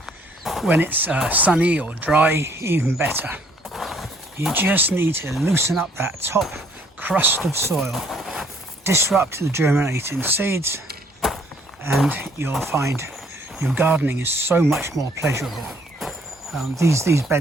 when it's sunny or dry, even better. You just need to loosen up that top crust of soil, disrupt the germinating seeds, and you'll find your gardening is so much more pleasurable. These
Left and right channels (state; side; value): normal; both; correlation 0.63